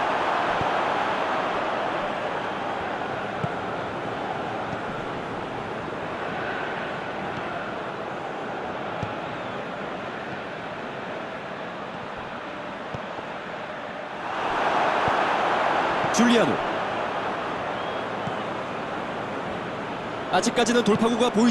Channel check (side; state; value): both; identical; correlation 1.00